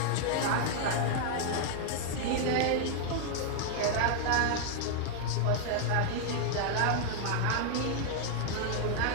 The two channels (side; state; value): both; different; correlation 0.00